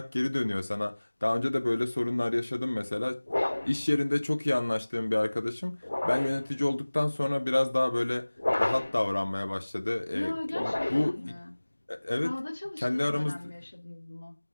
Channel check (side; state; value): both; inverted; correlation -1.00